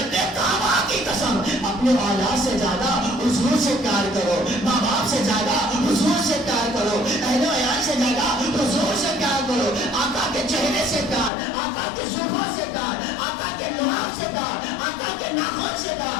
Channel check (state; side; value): drops out; right; at 11.3 s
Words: کعبہ کی قسم اپنے اولاد سے زیادہ حضور سے پیار کرو, ماں باپ سے زیادہ حضور سے پیار کرو, اہل و عیال سے زیادہ حضور سے پیار کرو. آقا کے چہرے سے پیار, آقا کے زلفوں سے پیار, آقا کے لحاف سے پیار, آقا کے ناخن سے